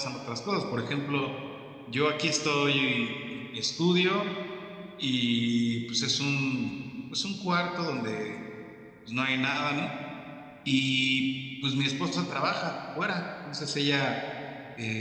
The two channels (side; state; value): both; identical; correlation 1.00